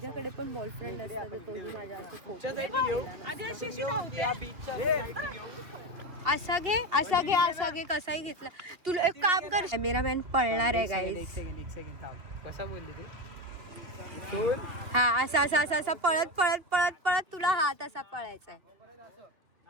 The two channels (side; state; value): left; late; 2.8 ms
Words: पण बॉयफ्रेंड असतात, कोणी माझ्या असे फोटो. आधी अशी अशी धावते. असा घे, असा घे, असा घे, कसाही घेतला. तुला एक काम कर, कॅमेरामॅन पळणार आहे गाईज. एक सेकंड थांब. कसा बोलली तू? हा, असा असा असा असा पळत पळत पळत पळत तुला हात असा पळायचा